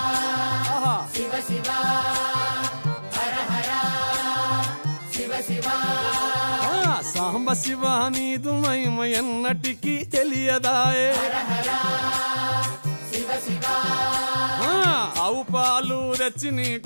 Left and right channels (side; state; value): both; inverted; correlation -1.00